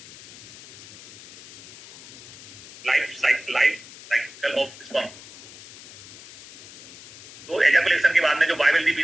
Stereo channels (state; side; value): noise; left; hiss, 18 dB below the sound